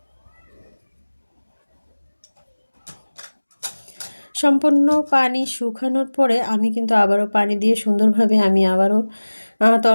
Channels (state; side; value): inverted; both; correlation -1.00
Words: সম্পূর্ণ পানি শুকানোর পরে আমি কিন্তু আবারও পানি দিয়ে সুন্দরভাবে আমি আবারও